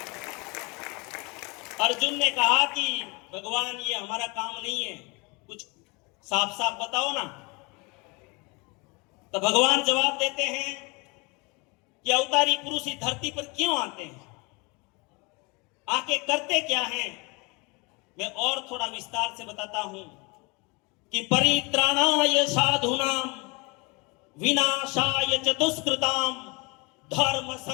अर्जुन ने कहा कि भगवान ये हमारा काम नहीं है, कुछ साफ साफ बताओ ना। तो भगवान जवाब देते हैं कि अवतारी पुरुष इस धरती पर क्यों आते हैं, आके करते क्या हैं। मैं और थोड़ा विस्तार से बताता हूं कि परित्राणाय साधूनाम विनाशाय च दुष्कृताम धर्म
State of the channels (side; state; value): right; quieter; 28.3 dB